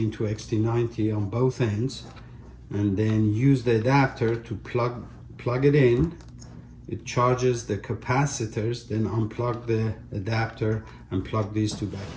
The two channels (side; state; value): both; identical; correlation 1.00